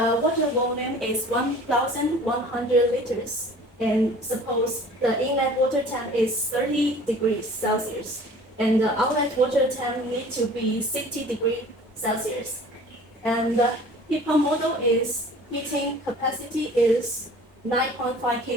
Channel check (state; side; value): normal; both; correlation 0.46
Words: water volume is 1,100 liters, and suppose the inlet water tank is 30 degrees Celsius, and the outlet water tank need to be 60 degrees Celsius, and the heat pump model is heating capacity is 9.5